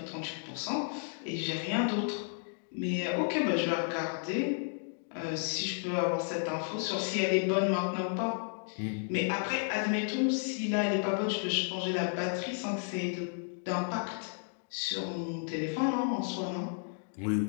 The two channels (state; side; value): silent; right; 56 dB below the other